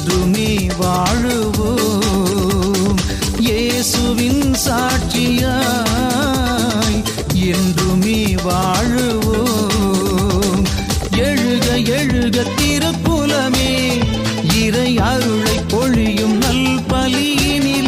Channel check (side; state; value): both; identical; correlation 1.00